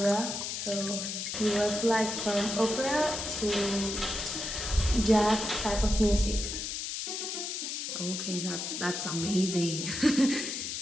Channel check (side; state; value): left; noise; hiss, 4 dB below the sound